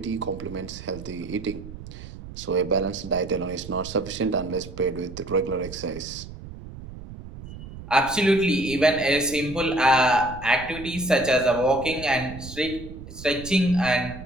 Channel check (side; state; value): right; noise; rumble, 13 dB below the sound